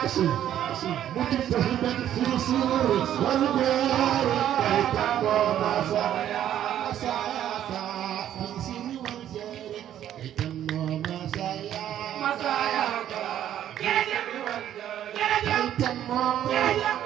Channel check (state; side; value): quieter; left; 11.1 dB